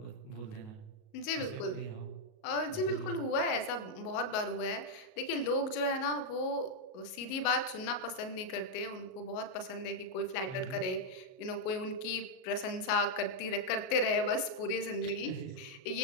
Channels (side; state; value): right; late; 38 ms